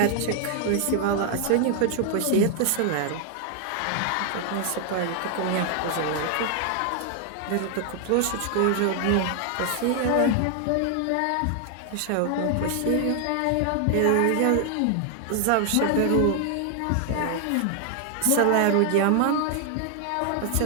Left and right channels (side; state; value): both; different; correlation 0.00